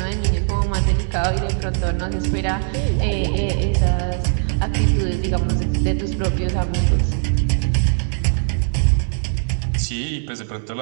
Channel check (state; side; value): silent; left; digital silence